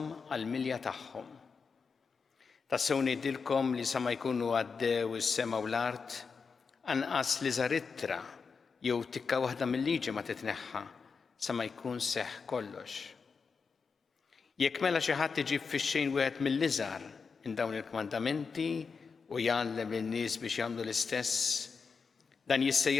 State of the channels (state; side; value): quieter; right; 5.3 dB